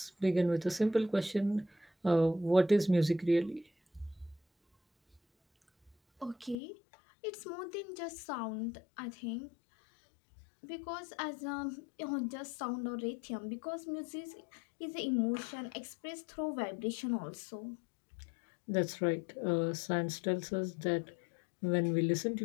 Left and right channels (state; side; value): drops out; right; at 6.6 s